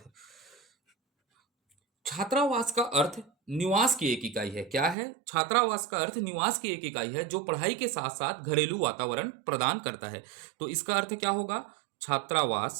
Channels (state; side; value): drops out; left; at 5.0 s